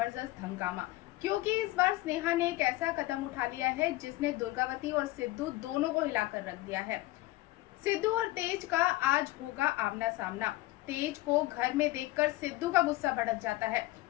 हंगामा, क्योंकि इस बार स्नेहा ने एक ऐसा कदम उठा लिया है जिसने दुर्गावती और सिद्धू दोनों को हिलाकर रख दिया है। सिद्धू और तेज का आज होगा आमना सामना। तेज को घर में देखकर सिद्धू का गुस्सा भड़क जाता है।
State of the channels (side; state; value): right; quieter; 18.4 dB